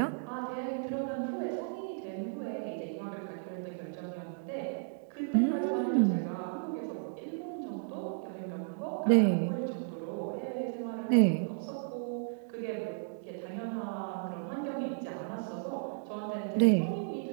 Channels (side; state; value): left; silent; digital silence